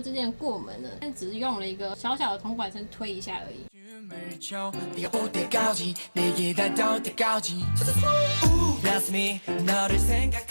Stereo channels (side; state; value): both; inverted; correlation -1.00